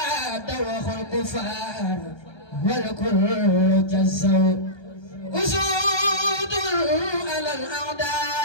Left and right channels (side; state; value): right; late; 1.2 ms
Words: وخل الكفار والكل جزوا أسود على